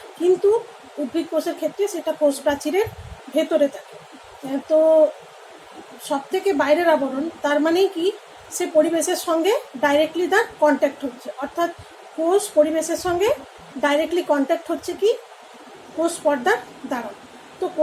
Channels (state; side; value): identical; both; correlation 1.00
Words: কিন্তু উদ্ভিদ কোষের ক্ষেত্রে সেটা কোষ প্রাচীরের ভেতরে থাকে। তো সব থেকে বাইরের আবরণ, তার মানেই কি সে পরিবেশের সঙ্গে ডাইরেক্টলি তার কন্ট্যাক্ট হচ্ছে, অর্থাৎ কোষ পরিবেশের সঙ্গে ডাইরেক্টলি কন্ট্যাক্ট হচ্ছে কি কোষ পর্দার দ্বারা। তো